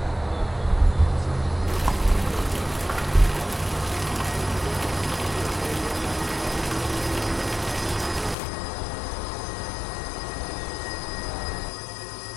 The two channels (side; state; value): right; drops out; at 8.3 s